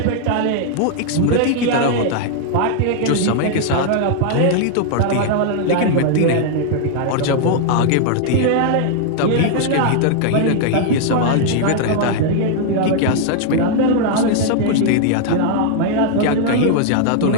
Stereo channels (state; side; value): different; both; correlation -0.01